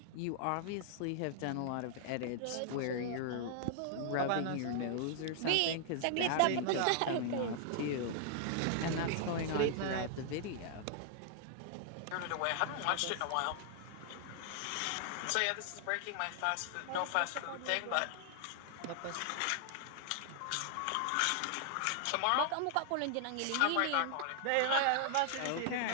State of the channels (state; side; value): different; both; correlation 0.00